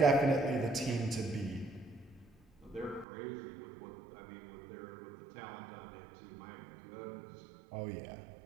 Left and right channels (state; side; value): drops out; left; at 3.1 s